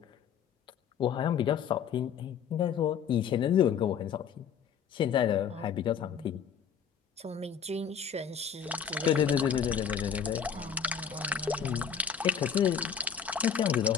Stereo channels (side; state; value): right; quieter; 7.6 dB